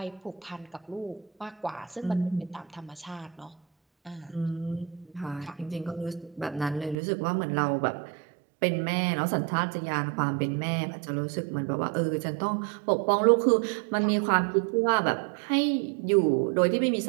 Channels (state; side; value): drops out; left; at 7.0 s